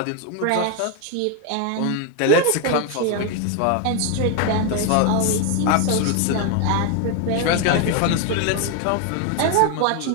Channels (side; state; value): both; different; correlation 0.01